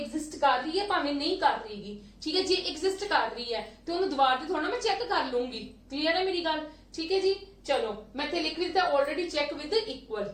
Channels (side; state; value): both; identical; correlation 1.00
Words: कर रही है भावें नहीं कर रहीगी, ठीक है, जे एग्जिस्ट कर रही है तो उन्हें दोबारा से थोड़ा मैं चेक कर लूंगी। क्लियर है मेरी गल, ठीक है जी। चलो मैं इत्थे लिख दिता already check with equal.